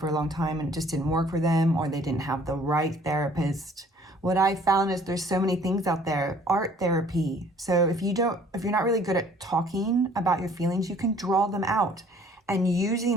a long time and it just didn't work for them, or they didn't have the right therapist. What I found is there's so many things out there. Art therapy. So if you're not really good at talking about your feelings, you can draw them out. And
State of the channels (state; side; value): normal; both; correlation 0.56